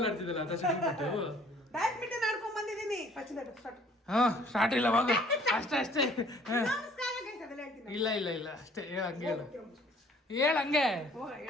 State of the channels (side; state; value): both; normal; correlation 0.57